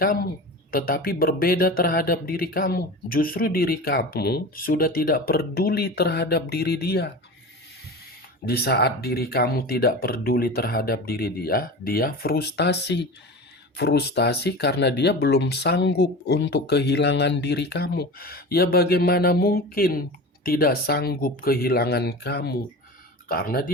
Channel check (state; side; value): normal; both; correlation 0.31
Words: tetapi berbeda terhadap diri kamu. Justru diri kamu sudah tidak peduli terhadap diri dia. Di saat diri kamu tidak peduli terhadap diri dia, dia frustasi. Frustasi karena dia belum sanggup untuk kehilangan diri kamu. Ya bagaimana mungkin tidak sanggup kehilangan kamu? Karena